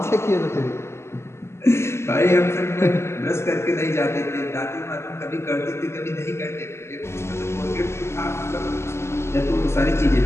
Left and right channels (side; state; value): right; late; 0.13 ms